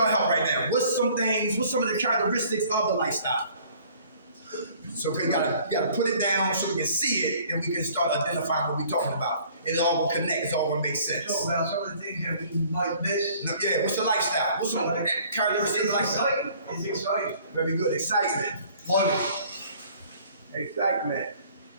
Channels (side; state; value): both; inverted; correlation -0.55